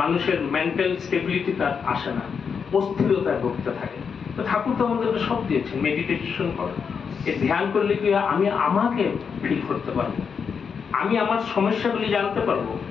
মানুষের মেন্টাল স্টেবিলিটি তার আসে না, অস্থিরতায় ভুগতে থাকে। তো ঠাকুর তো আমাদেরকে সব দিয়েছেন, মেডিটেশন করো। এই ধ্যান করলে কি আমি আমাকে ফিল করতে পারবো, আমি আমার সমস্যাগুলি জানতে পারবো।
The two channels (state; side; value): quieter; right; 6.3 dB